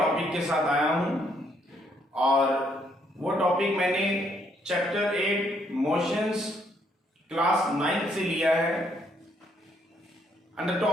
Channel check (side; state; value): both; normal; correlation 0.70